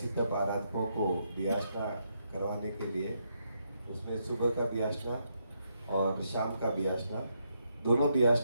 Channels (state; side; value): inverted; both; correlation -0.79